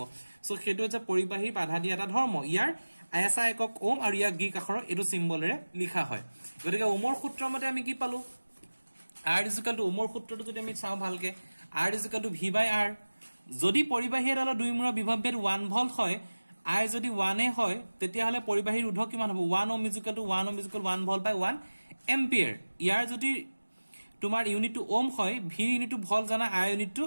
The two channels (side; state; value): both; inverted; correlation -1.00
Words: সো হেতু হৈছে পৰিবাহী বাধা দিয়া এটা ধৰ্ম ইয়াৰ আইএসআই একক ওম আৰু ইয়াক গ্ৰীক আখৰৰ এটো সিম্বলেৰে লিখা হয় গতিকে ওমৰ সূত্ৰৰ মতে আমি কি পালো R is equal to Omar সূত্ৰটো যদি আমি চাও ভালকে R is equal to V by R যদি পৰিবাহী এডালৰ দুইমূৰৰ বিভৱভেদ 1 ভোল্ট হয় I যদি 1 এ হয় তেতিয়া হলে পৰিবাহী ৰোধক কিমান হ'ব 1 ohm is equal to 1 ohm is equal to 1 volt by 1 ampere ইয়াৰ যদি তোমাৰ ইউনিট টু ওম হয় V ইউনিট টু ভোল্ট জানা I unit to